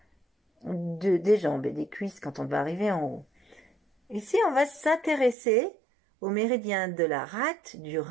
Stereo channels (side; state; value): left; drops out; at 5.4 s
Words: des jambes et des cuisses quand on va arriver en haut. Ici, on va s'intéresser au méridien de la rate, du